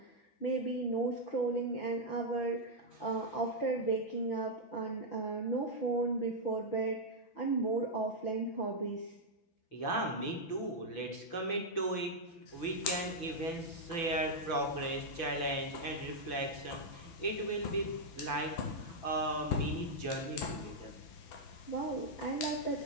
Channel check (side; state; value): right; late; 6.0 ms